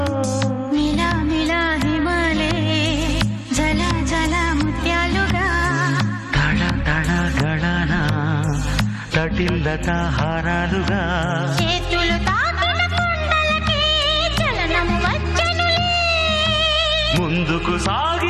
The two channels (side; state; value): both; identical; correlation 1.00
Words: మిలా మిలా హిమాలే జల జల ముత్యాలుగా తళ తళ గళన తటిల్లత హారాలుగా చేతులు తాకిన కొండలకి చలనము వచ్చనులే ముందుకు